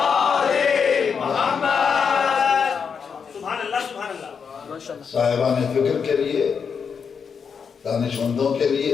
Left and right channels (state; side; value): quieter; right; 6.3 dB